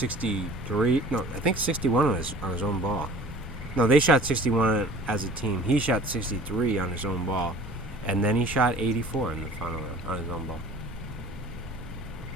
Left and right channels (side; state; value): right; noise; rumble, 14 dB below the sound